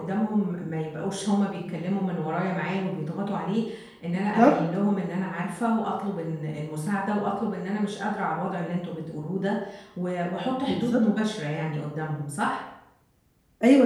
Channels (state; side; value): identical; both; correlation 1.00